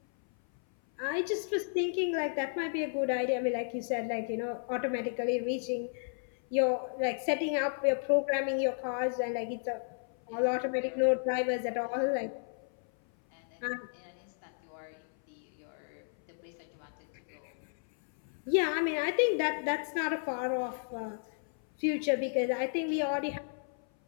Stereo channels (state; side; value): silent; right; 56 dB below the other